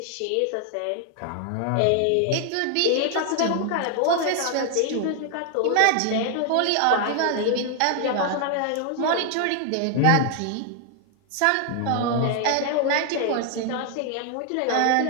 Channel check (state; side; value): different; both; correlation 0.00